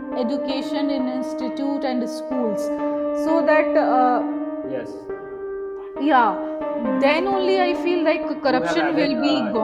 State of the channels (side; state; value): both; identical; correlation 1.00